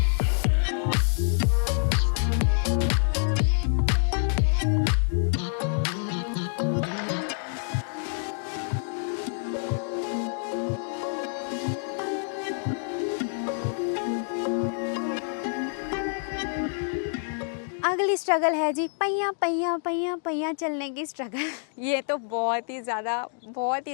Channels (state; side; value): silent; right; 60 dB below the other